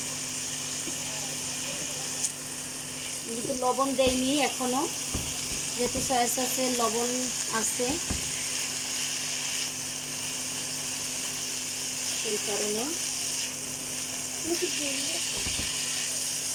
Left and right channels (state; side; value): identical; both; correlation 1.00